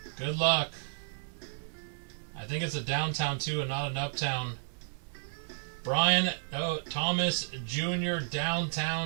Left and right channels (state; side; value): silent; left; digital silence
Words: Good luck. I think it's a downtown too and not an uptown. Brian Thomas Jr.